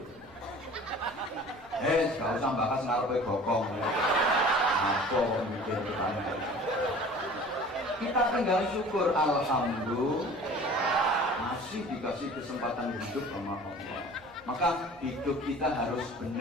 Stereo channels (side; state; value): right; noise; hum, 28 dB below the sound